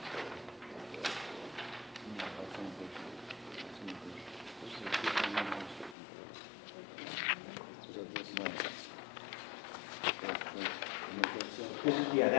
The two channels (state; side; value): drops out; right; at 6.0 s